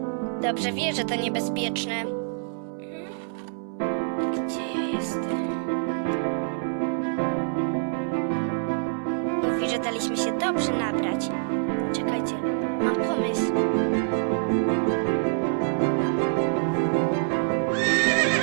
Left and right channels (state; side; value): silent; left; 61 dB below the other